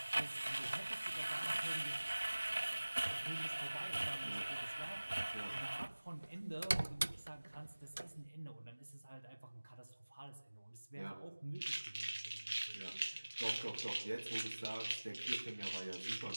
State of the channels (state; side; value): inverted; both; correlation -1.00